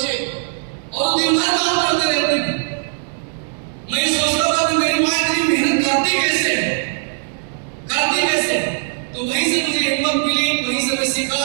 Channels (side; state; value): left; silent; 62 dB below the other